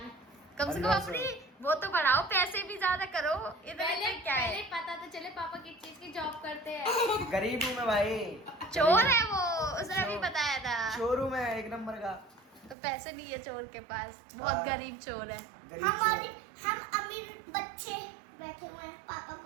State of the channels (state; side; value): drops out; left; at 12.8 s